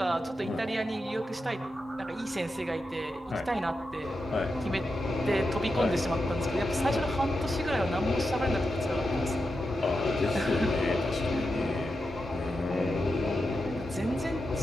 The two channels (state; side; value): normal; both; correlation 0.88